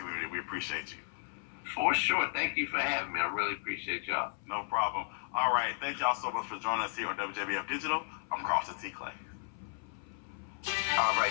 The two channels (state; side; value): silent; right; 55 dB below the other